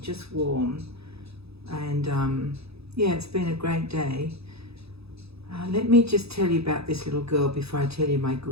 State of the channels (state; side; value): late; left; 0.78 ms